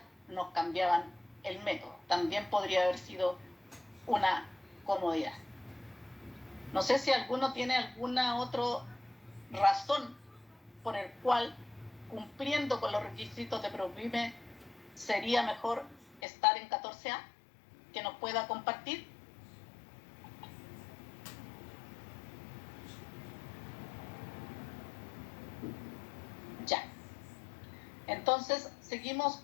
nos cambiaban el método. También podría haber sido una comodidad. No sé si alguno tiene alguna otra razón por el cual, cumpliendo con los requisitos de PROPYME, sería mejor estar en 14A, que nos pueda compartir. Ya. Entonces, seguimos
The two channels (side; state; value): right; drops out; at 16.2 s